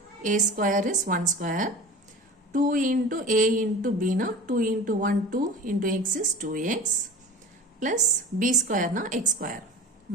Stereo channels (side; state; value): both; normal; correlation 0.37